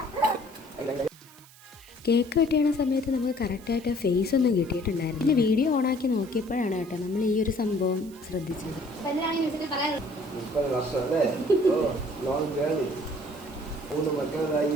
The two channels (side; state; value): right; noise; hiss, 23 dB below the sound